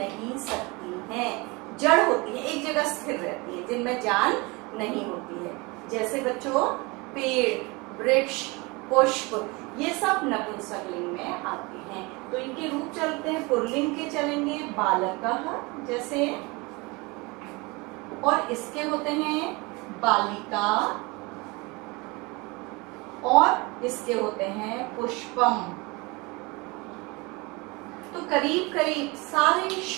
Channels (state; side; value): quieter; left; 25.9 dB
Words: सकती हैं, जड़ होती है, एक जगह स्थिर रहती है, जिनमें जान नहीं होती है। जैसे बच्चों पेड़, वृक्ष, पुष्प, ये सब नपुंसकलिंग में आते हैं। तो इनके रूप चलते हैं। पुल्लिंग के चलेंगे बालकः, जैसे और इसके होते हैं बालिका और इसके होते हैं पुष्पम। तो करीब करीब सारे